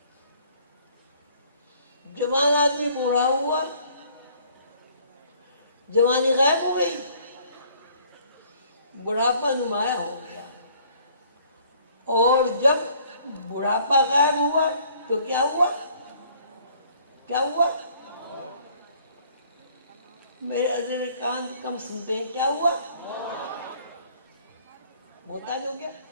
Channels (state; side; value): inverted; both; correlation -0.58